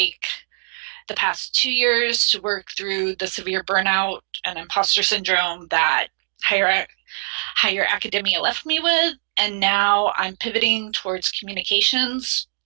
the past 2 years to work through the severe burnout and imposter syndrome that higher higher academia left me with. And now I'm pivoting towards communications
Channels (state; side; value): silent; left; digital silence